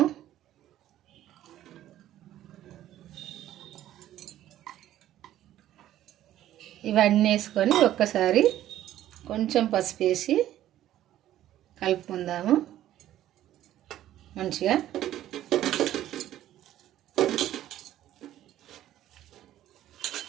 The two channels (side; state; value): left; quieter; 12.9 dB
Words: ఇవన్నీ వేసుకొని ఒక్కసారి కొంచెం పసుపు వేసి కలుపుకుందాము మంచిగా.